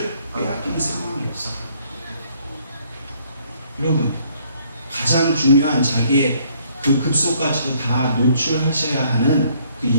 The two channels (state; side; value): inverted; both; correlation -0.65